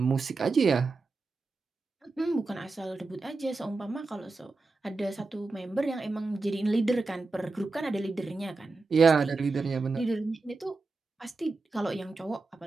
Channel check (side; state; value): left; quieter; 3.7 dB